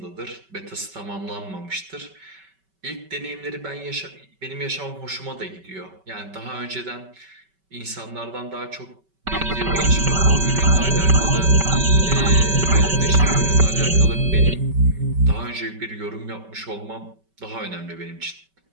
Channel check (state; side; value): late; left; 5.2 ms